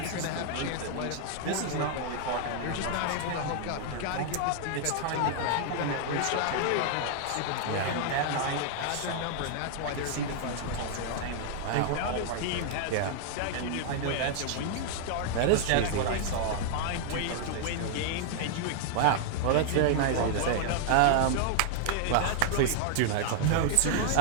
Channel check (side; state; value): both; different; correlation 0.00